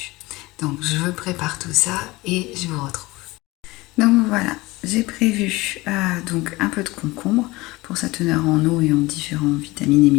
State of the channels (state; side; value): quieter; right; 21.1 dB